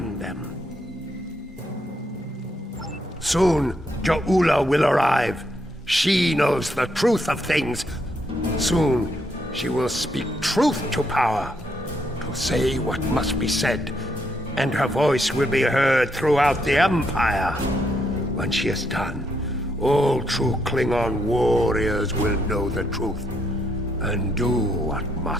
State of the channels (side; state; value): both; normal; correlation 0.76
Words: them. Soon, Ja'ula will arrive. She knows the truth of things. Soon, she will speak truth to power, to say what must be said, and her voice will be heard throughout the Empire. When she is done, all true Klingon warriors will know the truth, and do what